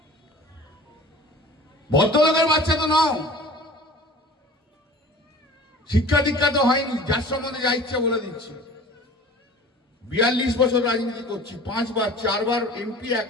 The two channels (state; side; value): normal; both; correlation 0.43